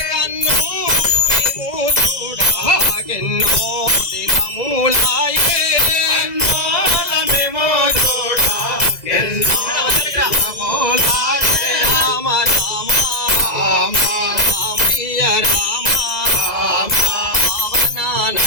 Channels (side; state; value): right; late; 2.0 ms